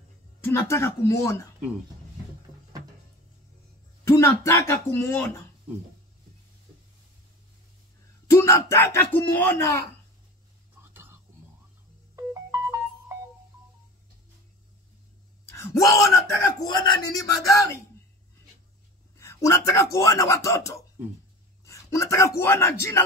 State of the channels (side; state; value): both; normal; correlation 0.35